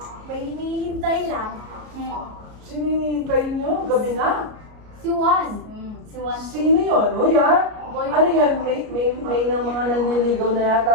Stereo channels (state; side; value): late; left; 33 ms